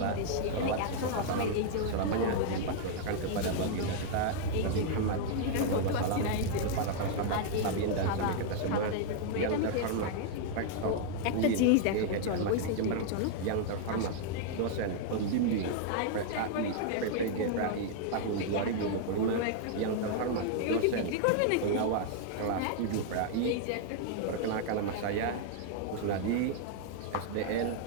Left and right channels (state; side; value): different; both; correlation -0.01